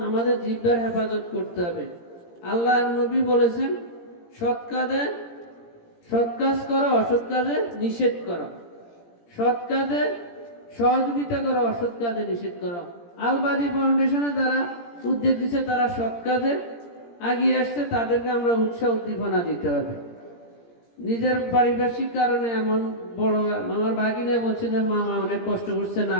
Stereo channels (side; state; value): right; late; 17 ms